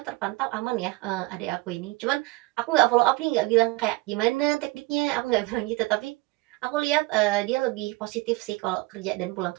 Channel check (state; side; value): quieter; left; 22.5 dB